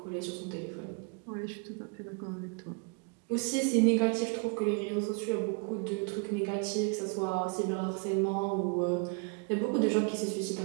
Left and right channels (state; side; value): quieter; left; 34.8 dB